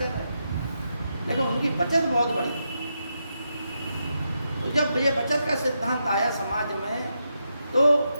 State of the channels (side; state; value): both; inverted; correlation -0.84